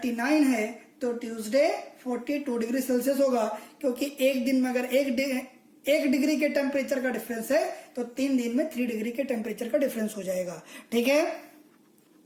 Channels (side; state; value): both; identical; correlation 1.00